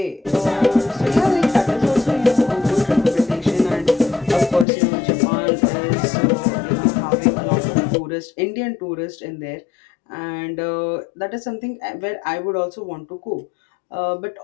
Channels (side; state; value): right; drops out; at 4.7 s